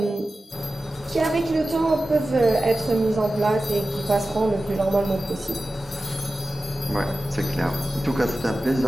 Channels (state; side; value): normal; both; correlation 0.95